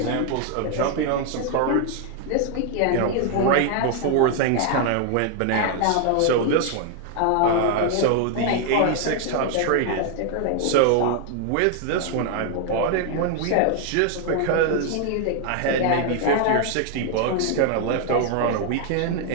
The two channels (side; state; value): both; different; correlation 0.00